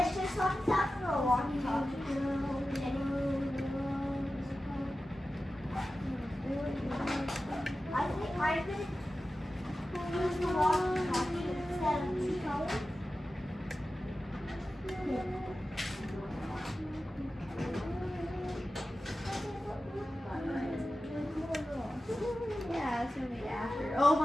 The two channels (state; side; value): normal; both; correlation 0.94